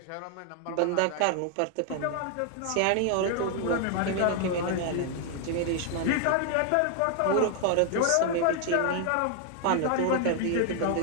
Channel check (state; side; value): different; both; correlation 0.00